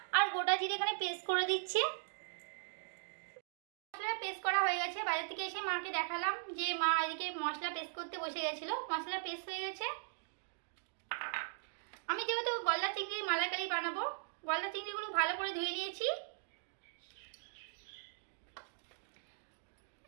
আর গোটা জিরে এখানে পেস্ট করে দিচ্ছে। মশলা পেস্ট করা হয়ে গেছে। বাজার থেকে এসে মাকে দেখালাম যে মা এদিকে মশলা পেস্ট করতে বসে গেছিলো। মশলা পেস্ট হয়ে গেছে। আমি যেহেতু গলদা চিংড়ির মালাইকারি বানাবো, গলদা চিংড়িগুলো ভালো করে ধুয়ে নিয়েছি।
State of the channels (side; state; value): left; silent; digital silence